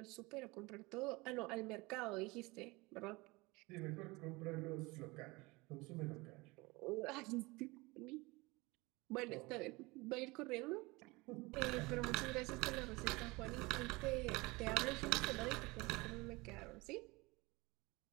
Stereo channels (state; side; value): quieter; left; 23.7 dB